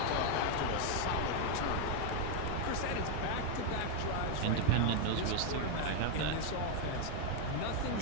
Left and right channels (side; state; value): both; different; correlation 0.01